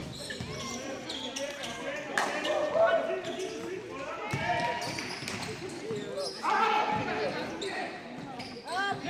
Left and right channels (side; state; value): both; identical; correlation 1.00